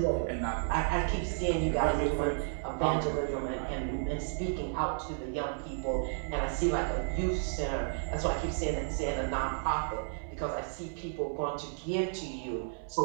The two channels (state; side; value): silent; left; 56 dB below the other